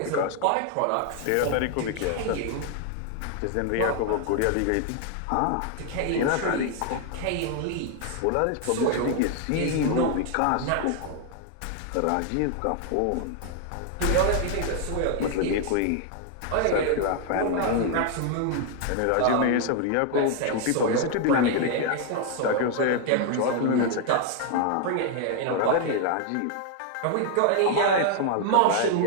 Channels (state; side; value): different; both; correlation 0.00